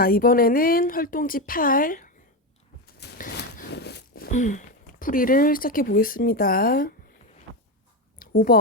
이번에는 활동지 8 풀이를 시작해 보겠습니다.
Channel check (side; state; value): both; normal; correlation 0.13